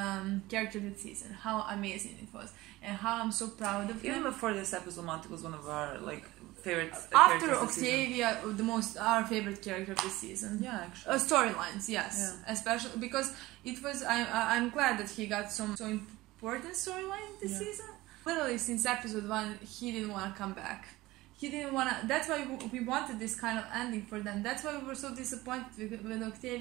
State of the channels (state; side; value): quieter; left; 18.8 dB